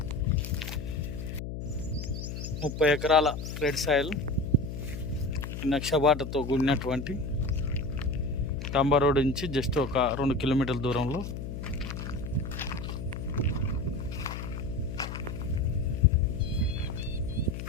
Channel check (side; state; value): left; noise; hum, 6 dB below the sound